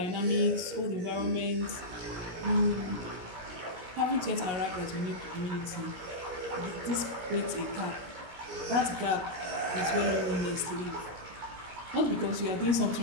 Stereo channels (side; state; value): left; late; 16 ms